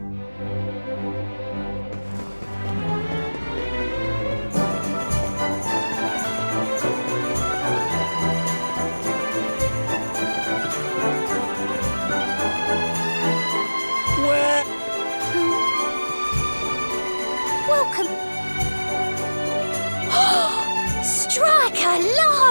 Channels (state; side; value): inverted; both; correlation -1.00